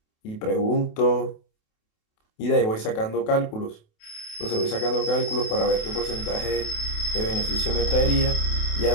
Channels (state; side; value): late; right; 28 ms